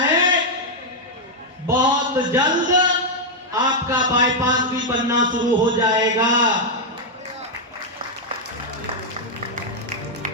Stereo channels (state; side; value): normal; both; correlation -0.01